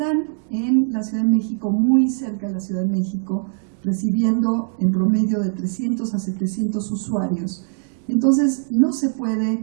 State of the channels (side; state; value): left; silent; 57 dB below the other